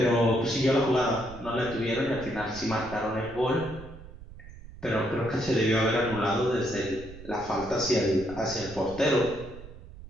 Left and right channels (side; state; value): right; noise; rumble, 16 dB below the sound